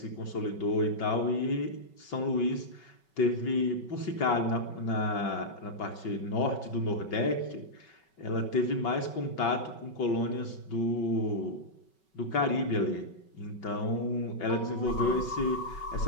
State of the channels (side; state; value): right; late; 5.3 ms